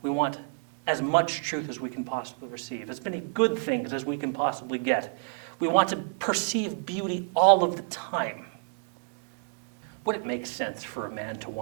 We want as much truth as we can possibly receive, as many good things as we can possibly get. We want to perceive beauty all of the time. Would it make sense for a man to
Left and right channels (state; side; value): silent; left; 59 dB below the other